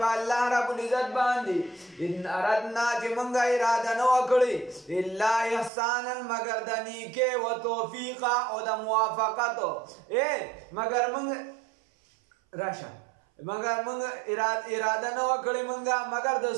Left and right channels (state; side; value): drops out; left; at 5.7 s